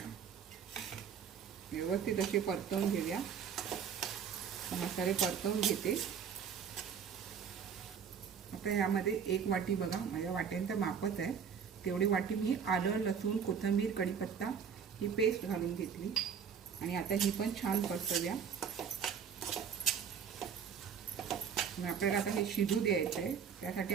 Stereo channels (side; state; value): left; quieter; 7.2 dB